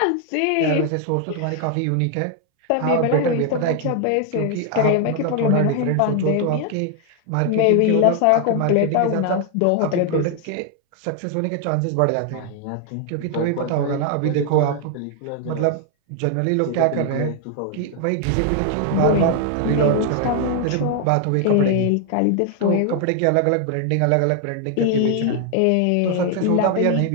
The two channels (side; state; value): both; different; correlation 0.00